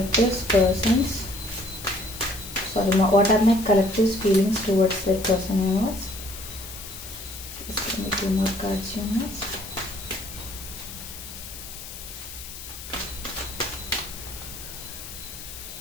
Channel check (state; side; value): noise; left; hiss, 12 dB below the sound